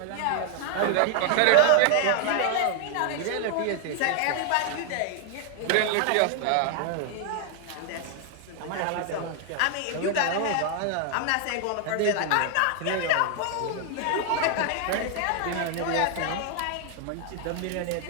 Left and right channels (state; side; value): different; both; correlation 0.00